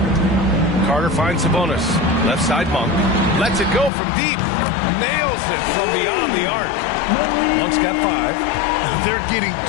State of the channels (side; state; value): right; drops out; at 3.9 s